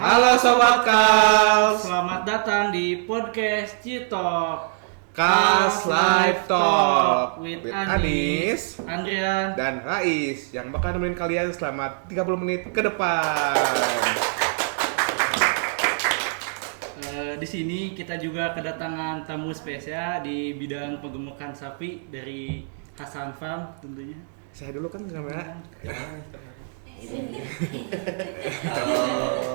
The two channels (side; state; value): left; silent; digital silence